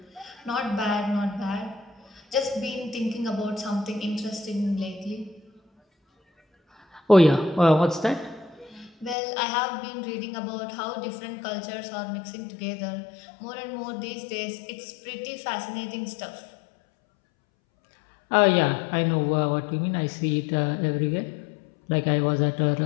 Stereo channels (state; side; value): drops out; right; at 9.2 s